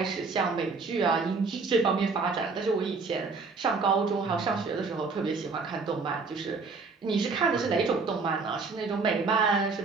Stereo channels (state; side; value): quieter; left; 4.4 dB